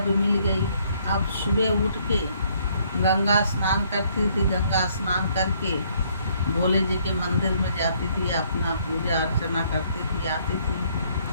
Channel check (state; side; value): inverted; both; correlation -0.67